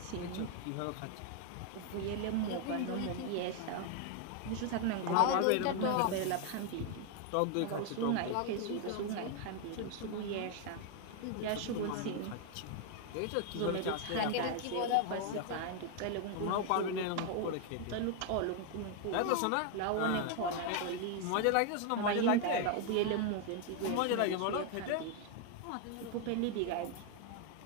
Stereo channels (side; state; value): both; different; correlation 0.00